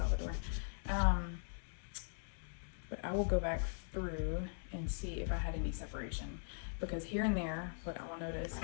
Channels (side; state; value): right; silent; digital silence